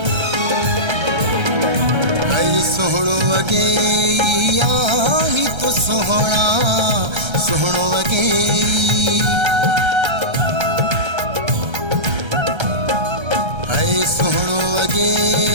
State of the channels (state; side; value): late; left; 1.3 ms